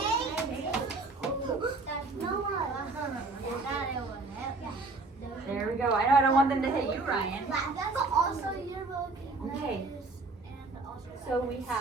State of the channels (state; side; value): quieter; left; 3.5 dB